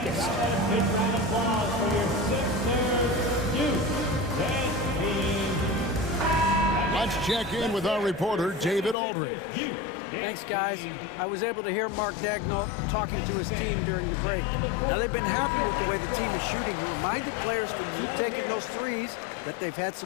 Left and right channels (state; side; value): drops out; right; at 9.0 s